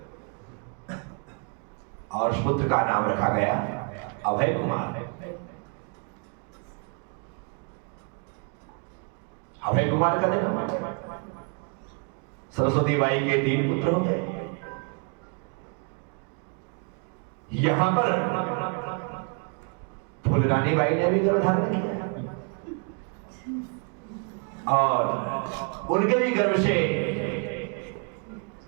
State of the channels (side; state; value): left; quieter; 37.7 dB